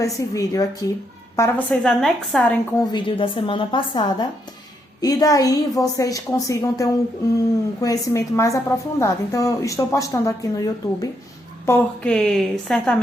vídeo aqui para vocês anexarem com o vídeo da semana passada e daí vocês consigam ter um conhecimento mais aprofundado. Então, eu estou postando aqui no YouTube, porque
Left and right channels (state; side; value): normal; both; correlation 0.77